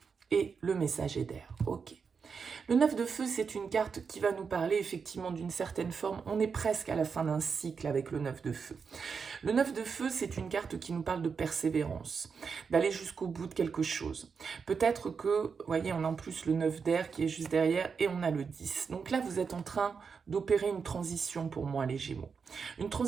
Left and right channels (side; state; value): left; quieter; 5.7 dB